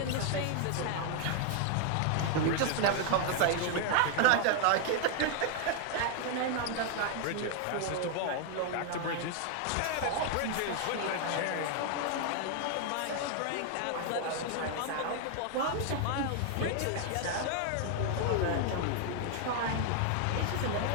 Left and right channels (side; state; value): both; different; correlation 0.00